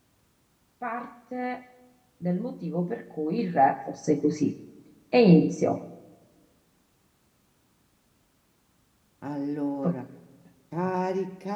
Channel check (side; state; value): both; identical; correlation 1.00